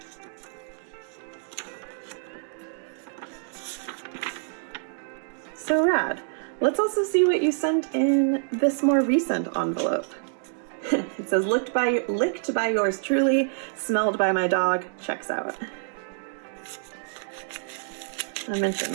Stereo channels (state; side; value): silent; left; digital silence